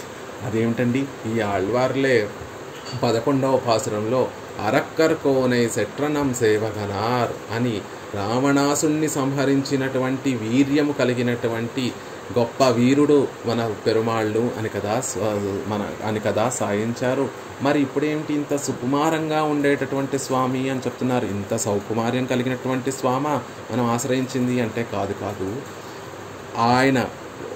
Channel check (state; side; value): identical; both; correlation 1.00